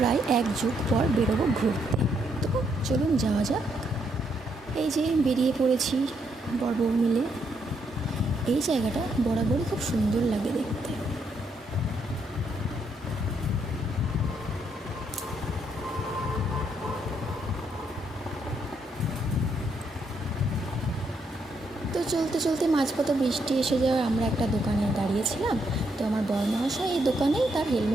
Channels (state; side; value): normal; both; correlation 0.76